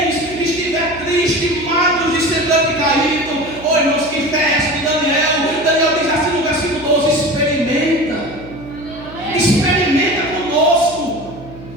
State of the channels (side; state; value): right; noise; hum, 16 dB below the sound